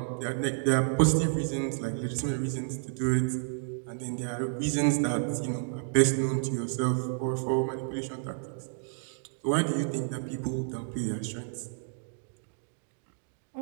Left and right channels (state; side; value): silent; left; digital silence